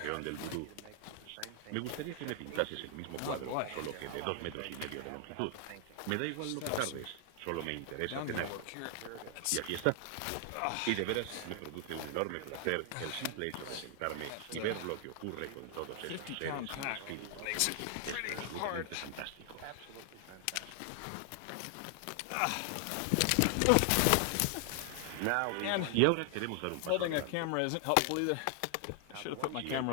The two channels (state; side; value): different; both; correlation 0.00